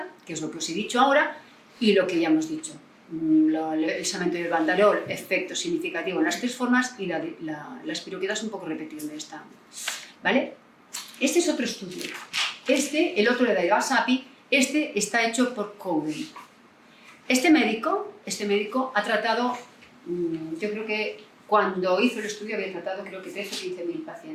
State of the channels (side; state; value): both; identical; correlation 1.00